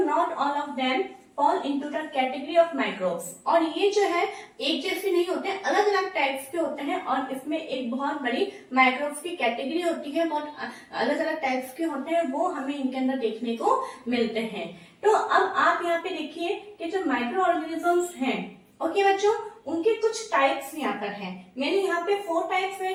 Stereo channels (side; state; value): both; identical; correlation 1.00